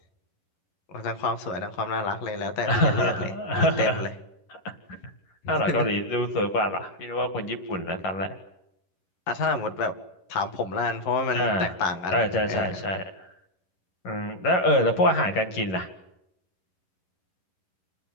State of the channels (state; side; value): late; right; 11 ms